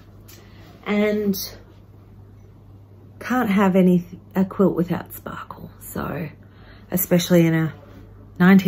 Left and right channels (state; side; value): identical; both; correlation 1.00